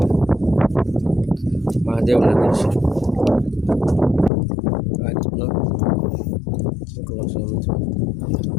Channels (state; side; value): drops out; right; at 4.3 s